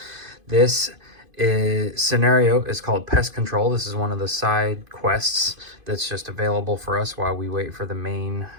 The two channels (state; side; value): late; left; 2.5 ms